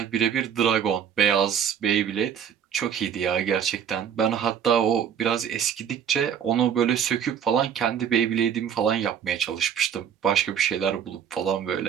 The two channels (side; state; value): left; quieter; 8.4 dB